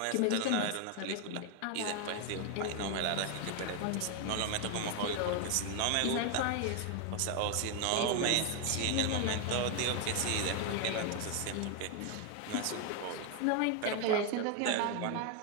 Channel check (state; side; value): different; both; correlation 0.01